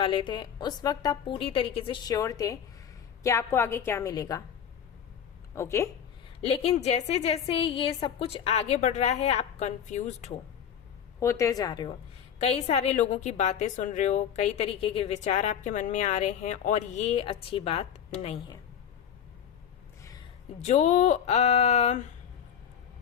थे, उस वक्त आप पूरी तरीके से श्योर थे कि आपको आगे क्या मिलेगा। ओके, लेकिन जैसे जैसे ये सब कुछ आगे बढ़ रहा है आप कंफ्यूज्ड होते जा रहे हो, कई सारे लोगों की बातें सुन रहे हो, कई तरीके के विचार आपके मन में आ रहे हैं, और ये अच्छी बात नहीं है। जो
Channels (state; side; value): quieter; right; 8.6 dB